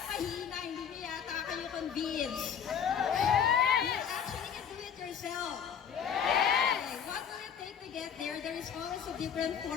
Mahina, hindi mo yata kayo convinced. You actually can do it yourself. Okay, what will it take to get there? There is always a different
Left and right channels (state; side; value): quieter; right; 7.9 dB